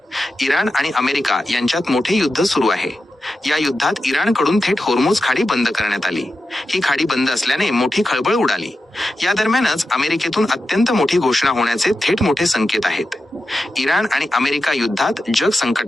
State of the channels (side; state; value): both; normal; correlation 0.90